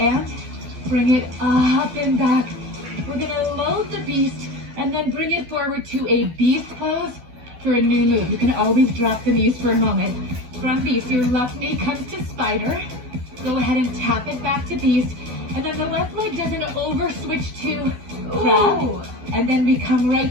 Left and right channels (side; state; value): left; late; 12 ms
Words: bring it up and back. We're gonna load the beast and then bring it forward to a beast pose for a new move. You can always drop the knees for a moment. From beast, your left knee comes to spider. Go ahead and tap it back to beast. And then the left leg does an over switch to crab. And then we come